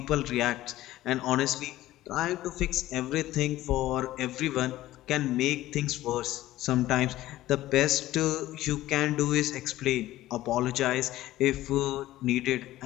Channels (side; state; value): right; quieter; 15.5 dB